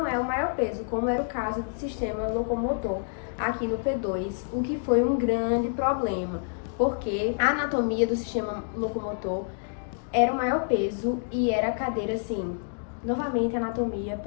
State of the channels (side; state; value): right; silent; digital silence